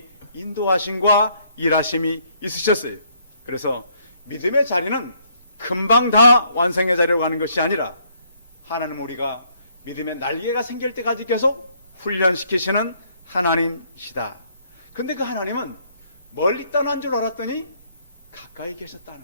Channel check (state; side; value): inverted; both; correlation -0.67